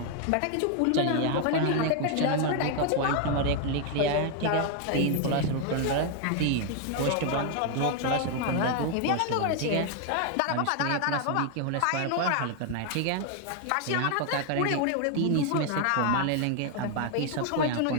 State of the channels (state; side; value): different; both; correlation 0.00